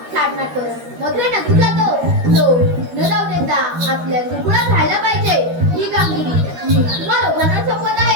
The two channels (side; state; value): left; late; 13 ms